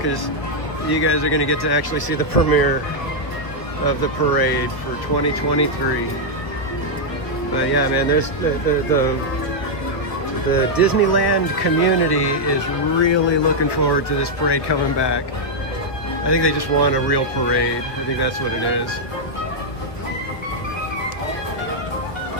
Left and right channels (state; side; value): late; right; 1.5 ms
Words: you guys are going to get to actually see the premiere of the parade for 2023. But yeah, man, there's the Disneyland community is really looking forward to this parade coming back. I think they just want a real parade. I think that's what it is.